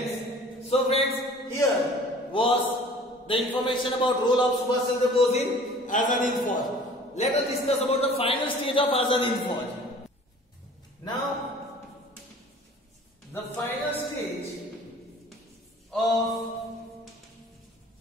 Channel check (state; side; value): normal; both; correlation 0.48